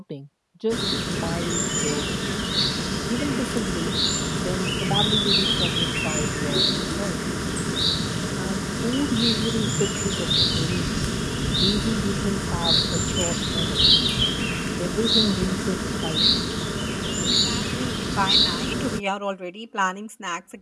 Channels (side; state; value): both; identical; correlation 1.00